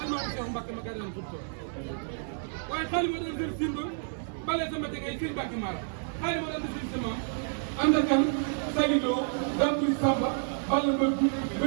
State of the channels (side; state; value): left; silent; digital silence